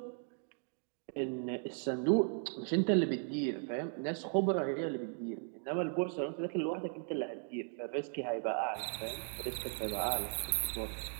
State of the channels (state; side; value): silent; left; 53 dB below the other